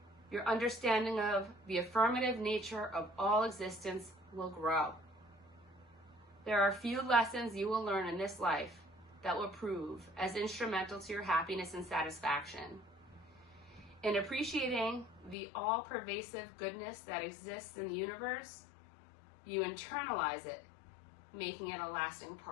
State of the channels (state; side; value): drops out; right; at 15.4 s